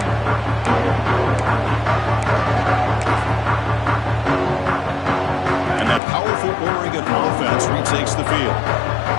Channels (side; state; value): right; drops out; at 6.0 s